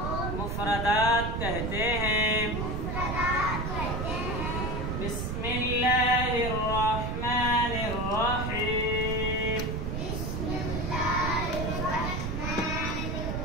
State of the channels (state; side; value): noise; right; rumble, 2 dB below the sound